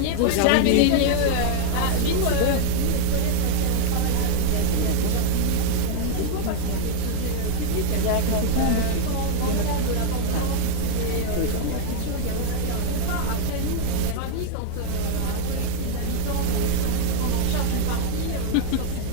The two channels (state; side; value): different; both; correlation 0.00